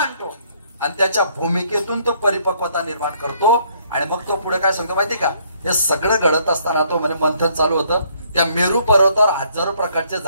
आणि त्याच्या भूमिकेतून तो परिपक्वता निर्माण करतो. आणि मग तो पुढे काय सांगतो माहिती का? हे सगळं घडत असताना तो म्हणजे मंथन चालू होतं. त्या मेरू पर्वतावर हजारो प्रकारचे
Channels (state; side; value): inverted; both; correlation -0.66